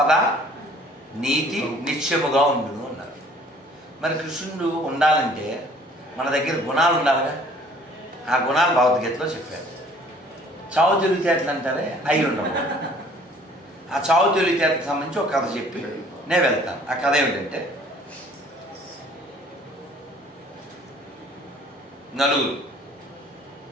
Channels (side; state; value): both; normal; correlation 0.55